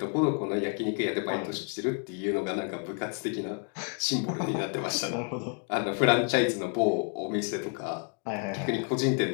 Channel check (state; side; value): quieter; right; 38.6 dB